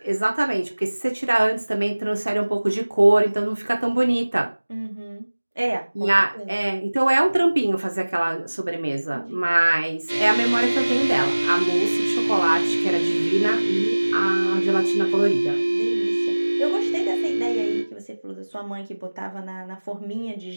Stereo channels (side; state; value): both; inverted; correlation -1.00